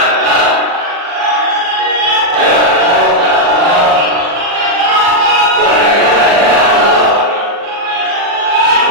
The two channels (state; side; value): late; left; 39 ms